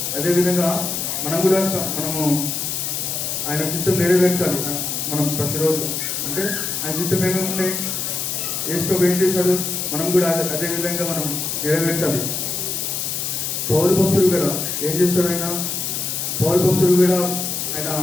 అదేవిధంగా మనం కూడా మనము ఆయన చిత్తం నెరవేర్చాలి. మనం ప్రతిరోజు అంటే ఆయన చిత్తం ఏమేమి ఉన్నాయి, యేసు ప్రభు ఏం చేశాడు, మనం కూడా అదే విధంగా మనం నెరవేర్చాలి. పౌలు భక్తుడు కూడా ఏం చేస్తాడు, పౌలు భక్తుడు కూడా ఆయన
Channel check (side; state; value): left; noise; hiss, 2 dB below the sound